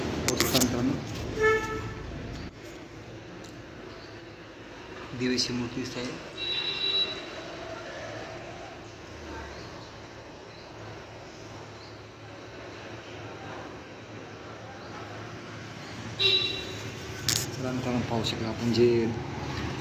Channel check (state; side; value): identical; both; correlation 1.00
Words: मित्रांनो देवीची मूर्ती दिसत आहे. मित्रांनो पाहू शकता आपण जे